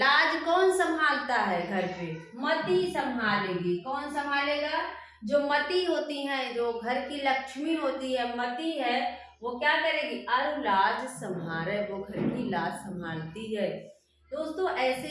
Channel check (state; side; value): identical; both; correlation 1.00